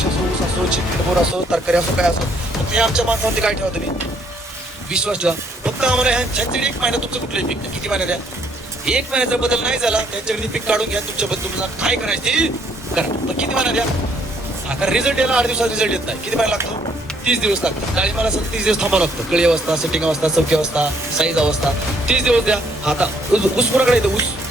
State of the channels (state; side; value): normal; both; correlation 0.67